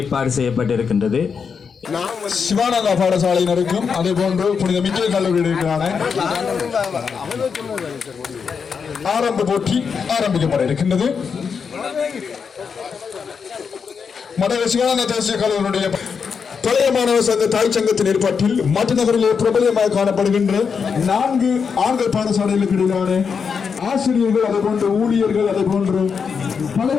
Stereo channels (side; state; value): right; quieter; 6.1 dB